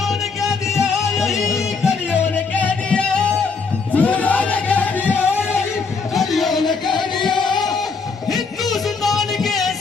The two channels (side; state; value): right; quieter; 4.8 dB